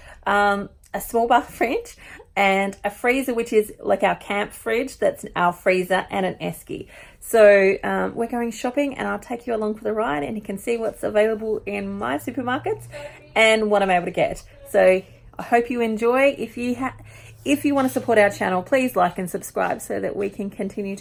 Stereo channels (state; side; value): identical; both; correlation 1.00